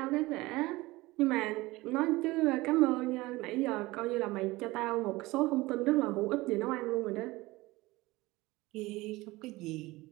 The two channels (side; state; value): left; quieter; 20.4 dB